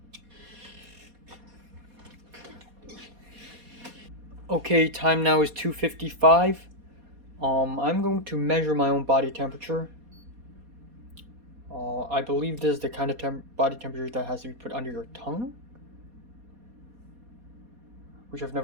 Okay, time now is 2:55. I'm going to measure my own body temperature. I believe this is the kind of body temperature that has to be put under your tongue, which I've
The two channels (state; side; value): late; left; 4.2 ms